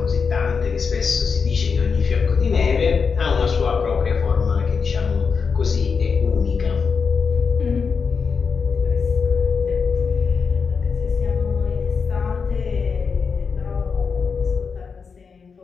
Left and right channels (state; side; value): quieter; right; 5.5 dB